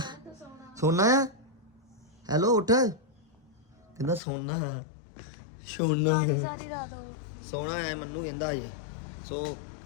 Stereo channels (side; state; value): right; drops out; at 4.2 s